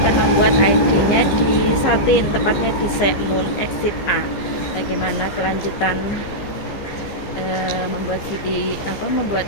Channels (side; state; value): right; late; 15 ms